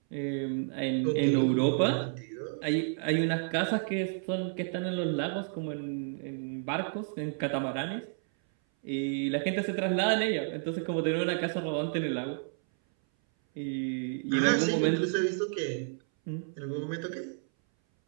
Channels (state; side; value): silent; left; 57 dB below the other